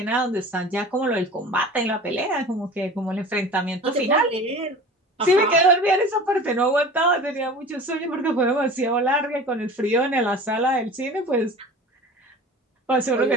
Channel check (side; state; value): both; normal; correlation 0.39